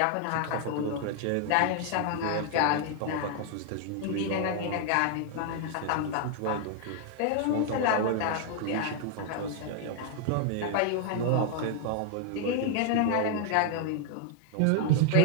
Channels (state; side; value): different; both; correlation 0.00